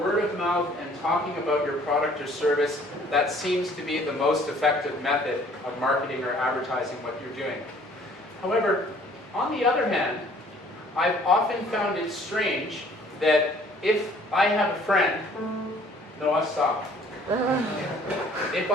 of mouth and talking about your product or service, that seems to be the most effective method of marketing or advertising what you're doing. However, on the other hand, I've often found it strange that if I have a friend, Noah, stop. If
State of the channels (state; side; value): normal; both; correlation 0.56